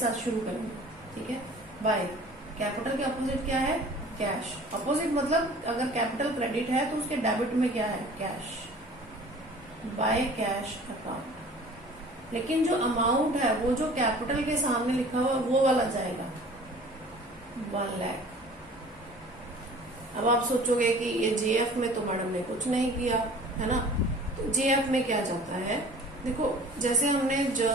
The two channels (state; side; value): normal; both; correlation 0.47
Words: शुरू करेंगे। ठीक है, बाय। कैपिटल के अपोजिट क्या है? कैश। अपोजिट मतलब अगर कैपिटल क्रेडिट है तो उसके डेबिट में क्या है? कैश। By cash account. लेकिन जो अमाउंट है वो जो कैपिटल के सामने लिखा हुआ वो वाला जाएगा 1 लाख। अब आप सोचोगे कि ये जेएफ में तो मैडम ने कुछ नहीं किया है ना, तो जेएफ में क्या जाता है? देखो जैसे हमने